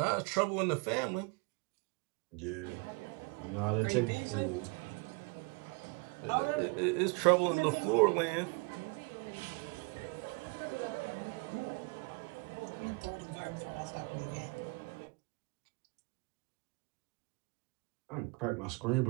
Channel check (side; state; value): left; quieter; 31.2 dB